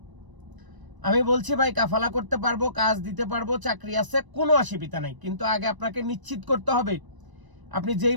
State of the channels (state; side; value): late; left; 1.0 ms